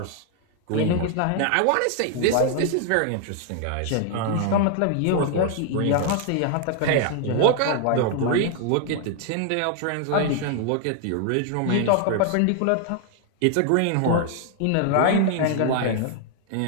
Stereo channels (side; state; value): both; different; correlation 0.00